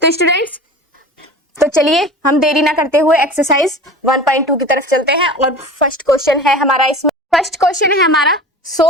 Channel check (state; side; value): normal; both; correlation 0.37